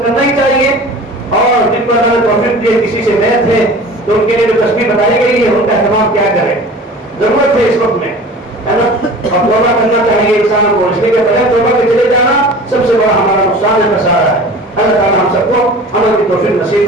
کرنا ہی چاہیے، اور جن کو اللہ نے توفیق دی ہے کسی سے بیعت ہے تو ان کے لیے جو تسبیح بتائی گئی ہے ان کا اہتمام کیا کرے، ضرورت ہے اس وقت میں، ہے نا، اور توبہ کرنا چاہیے انسان کو، اس لیے کہ بغیر توبہ کے چلے جانا سب سے بڑا ہمارا نقصان ہے، خسارہ ہے۔ اللہ تعالیٰ ہم سب کو عمل کی توفیق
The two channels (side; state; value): both; normal; correlation 0.40